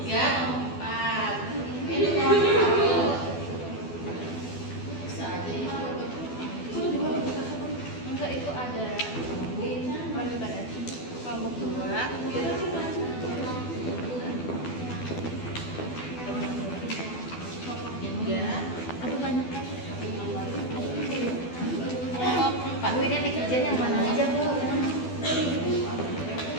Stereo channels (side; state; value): right; late; 12 ms